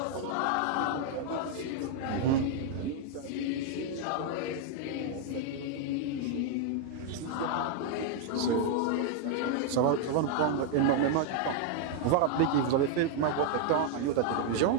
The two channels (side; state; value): both; different; correlation 0.00